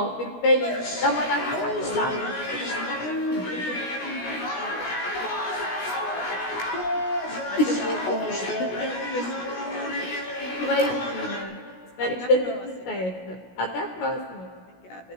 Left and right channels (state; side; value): late; right; 16 ms